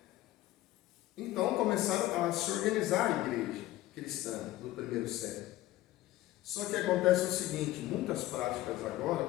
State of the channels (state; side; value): quieter; right; 16.0 dB